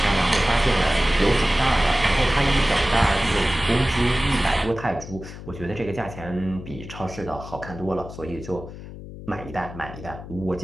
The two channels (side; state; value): left; noise; hum, 13 dB below the sound